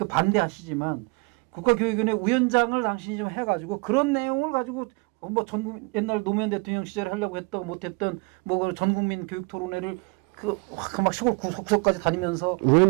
국가교육위원회 위원장을 당신이 좀 해가지고 그런 내용을 가지고 뭐 옛날 노무현 대통령 시절에 하려고 했던 못했던 뭐 전국민 교육 토론회를 막 시골 구석까지 다니면서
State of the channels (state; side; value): quieter; left; 28.6 dB